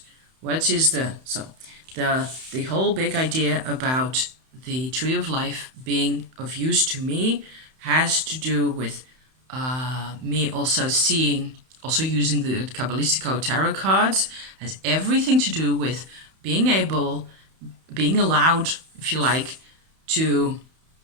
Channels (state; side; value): late; left; 31 ms